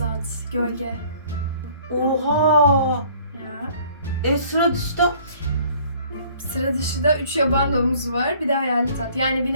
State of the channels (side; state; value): both; inverted; correlation -0.55